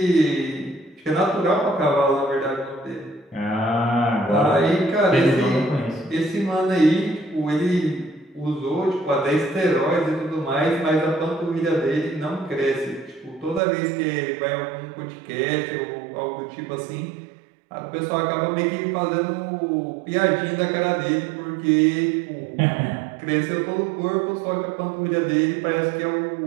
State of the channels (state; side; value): drops out; left; at 13.6 s